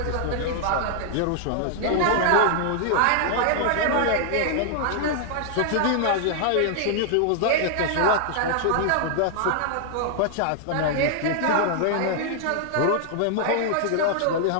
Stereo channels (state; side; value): different; both; correlation -0.01